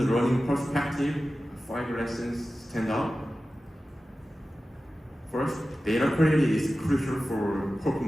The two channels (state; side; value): normal; both; correlation 0.95